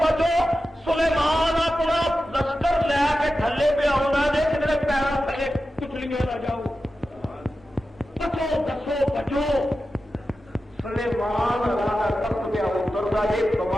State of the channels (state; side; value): normal; both; correlation 0.92